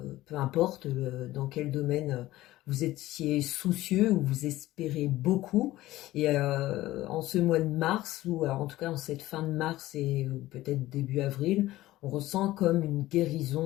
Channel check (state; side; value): quieter; right; 16.4 dB